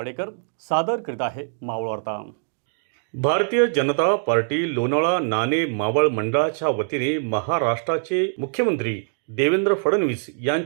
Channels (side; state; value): left; silent; digital silence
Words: सादर करीत आहे मावळ वार्ता। भारतीय जनता पार्टी लोणावळा नाणे मावळ मंडळाच्या वतीने महाराष्ट्राचे मुख्यमंत्री देवेंद्र फडणवीस